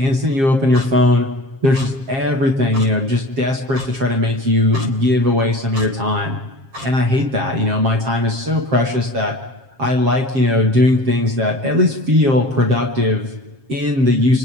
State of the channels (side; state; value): left; late; 7.5 ms